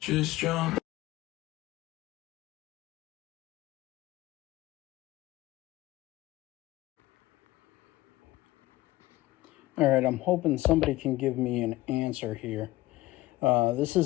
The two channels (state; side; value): quieter; right; 18.0 dB